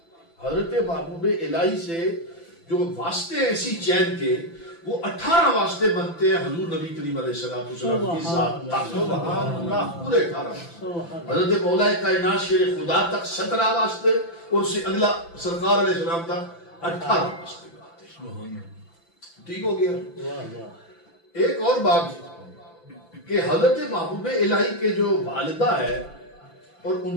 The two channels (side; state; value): right; late; 5.9 ms